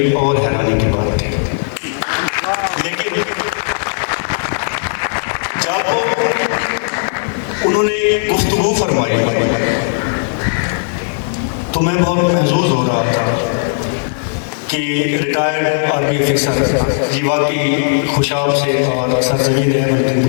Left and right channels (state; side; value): silent; right; digital silence